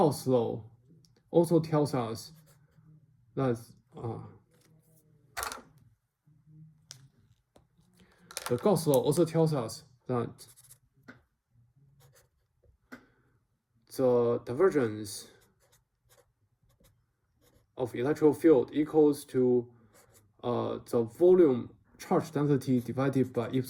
law also tells us that the Gauss law also tells us that the divergence of electric field equals to the volume charge density divided by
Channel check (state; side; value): identical; both; correlation 1.00